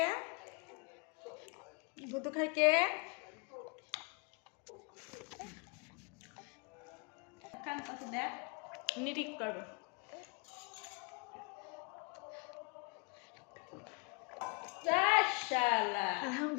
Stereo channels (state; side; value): quieter; right; 32.5 dB